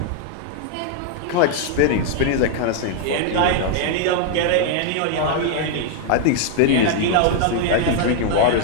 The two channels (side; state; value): both; different; correlation 0.00